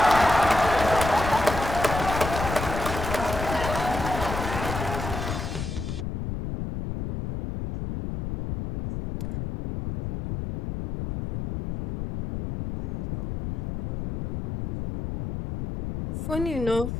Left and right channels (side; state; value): left; noise; rumble, 4 dB below the sound